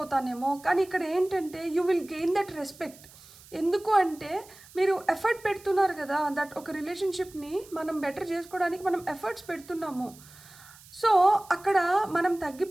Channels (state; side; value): noise; right; hiss, 22 dB below the sound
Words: కానీ ఇక్కడ ఏంటంటే you will gain that respect. ఎందుకు అంటే మీరు ఎఫర్ట్ పెడుతున్నారు కదా, దట్ ఒక రిలేషన్షిప్ని మనం బెటర్ చేసుకోవడానికి మనం ఎఫర్ట్స్ పెడుతున్నాము. సో అక్కడ మనం